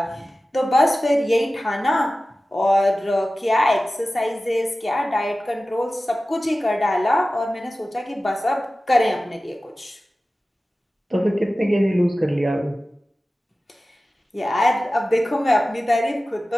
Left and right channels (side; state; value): both; normal; correlation 0.96